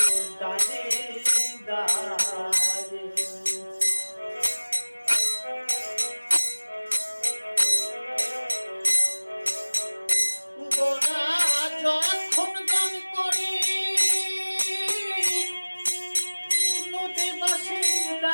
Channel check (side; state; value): both; inverted; correlation -1.00